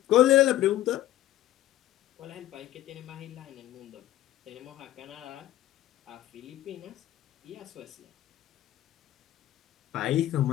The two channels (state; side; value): quieter; right; 14.0 dB